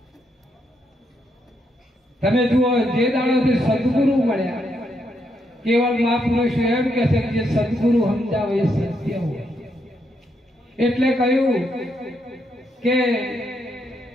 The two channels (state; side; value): normal; both; correlation 0.78